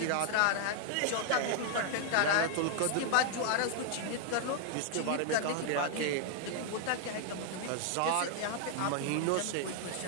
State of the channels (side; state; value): both; different; correlation 0.00